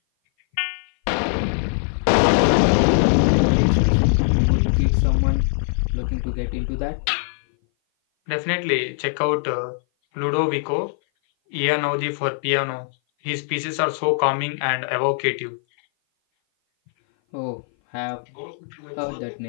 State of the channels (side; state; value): right; silent; 58 dB below the other